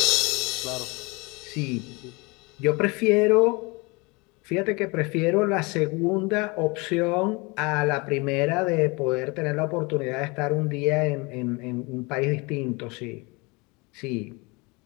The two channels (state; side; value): quieter; right; 27.1 dB